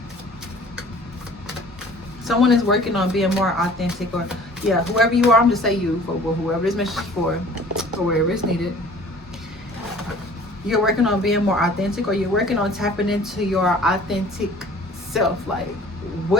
Someone is working on being more authentic, or yeah, whoever you are, I'm just say you for whoever this message is for, or wherever it's needed. You're working on being more authentic, or you're working on tapping into your authentic self. Like,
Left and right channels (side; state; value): both; normal; correlation 0.49